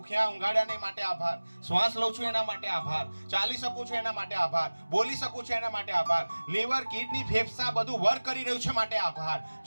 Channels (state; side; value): inverted; both; correlation -1.00